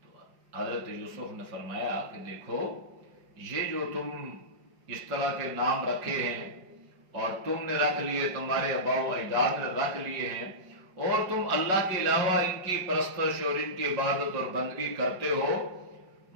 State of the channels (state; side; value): late; left; 5.5 ms